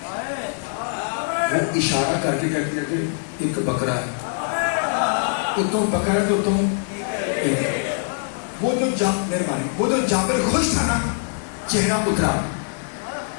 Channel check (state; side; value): silent; right; 63 dB below the other